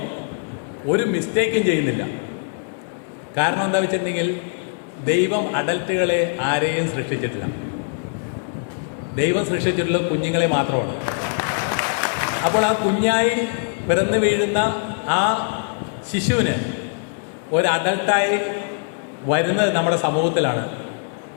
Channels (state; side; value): silent; right; 64 dB below the other